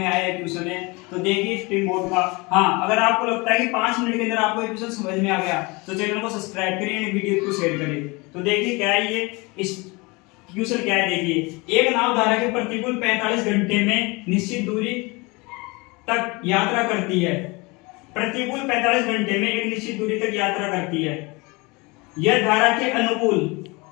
आया क्वेश्चन है। तो देखिए स्ट्रीम बोर्ड का। हाँ, अगर आपको लगता है कि 5 मिनट के अंदर आपको क्वेश्चन समझ में आ गया तो चैनल को सब्सक्राइब करिए, वीडियो को शेयर करिए। तो देखिए क्या है ये क्वेश्चन क्या है। देखिए, एक नाव धारा के प्रतिकूल 45 घंटे में निश्चित दूरी तक यात्रा करती है। प्रतिकूल 45 घंटे में एक निश्चित दूरी तक यात्रा करती है। यह धारा के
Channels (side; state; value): right; quieter; 26.0 dB